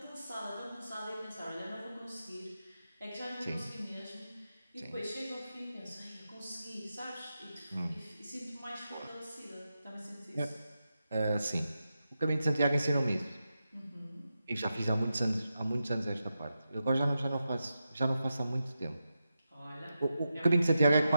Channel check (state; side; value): inverted; both; correlation -0.89